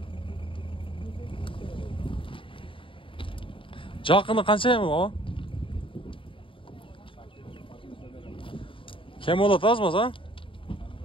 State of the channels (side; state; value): right; late; 0.25 ms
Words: Жақыны қанша ем о? Кем болады аз маса?